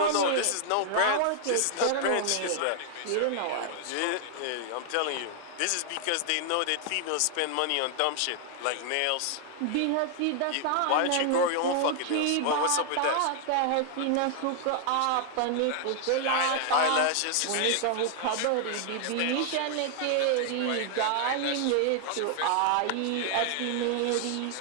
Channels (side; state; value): both; different; correlation 0.00